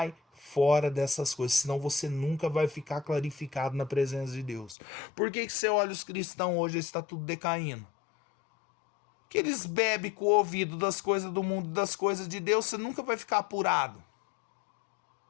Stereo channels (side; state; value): right; drops out; at 4.8 s